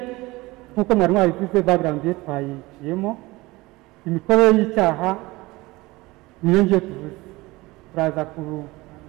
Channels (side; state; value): left; quieter; 21.2 dB